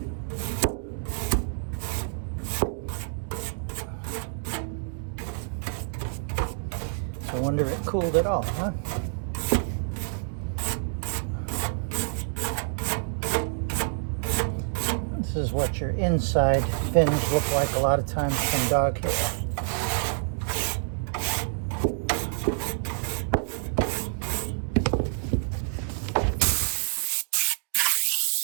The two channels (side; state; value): left; silent; digital silence